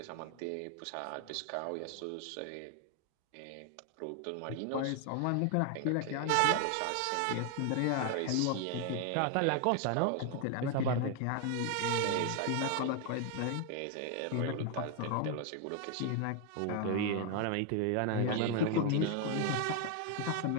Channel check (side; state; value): both; different; correlation 0.01